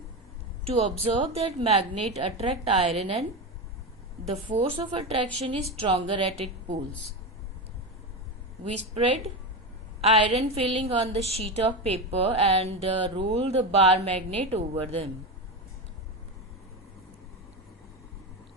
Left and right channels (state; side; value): normal; both; correlation 0.18